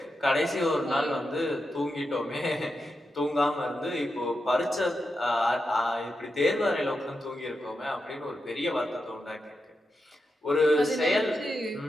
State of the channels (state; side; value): normal; both; correlation 0.88